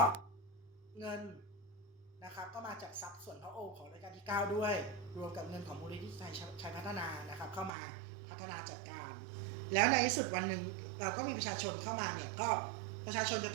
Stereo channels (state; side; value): drops out; left; at 7.7 s